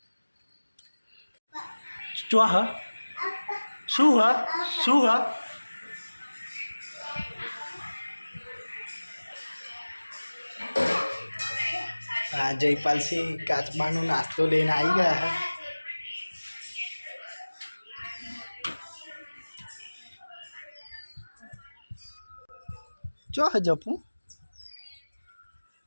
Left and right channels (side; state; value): both; inverted; correlation -1.00